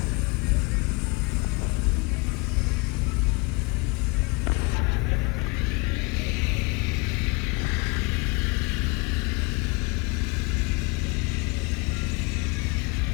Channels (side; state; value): right; quieter; 27.8 dB